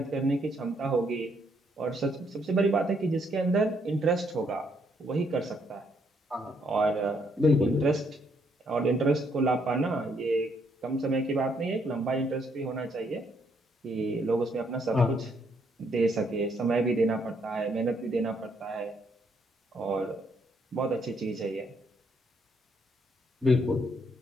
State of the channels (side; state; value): both; normal; correlation 0.72